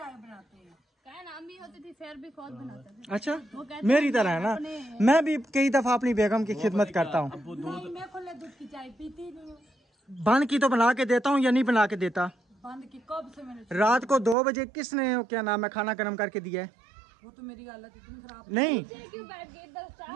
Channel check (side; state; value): left; drops out; at 14.4 s